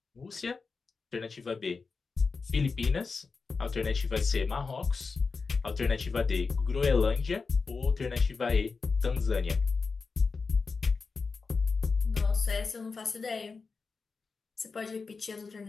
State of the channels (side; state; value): right; quieter; 4.6 dB